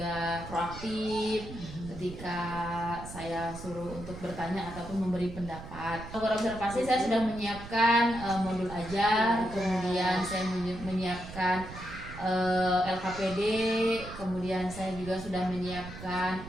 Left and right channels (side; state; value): right; noise; rumble, 12 dB below the sound